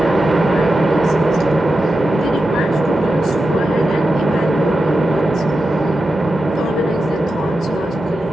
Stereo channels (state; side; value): normal; both; correlation 0.90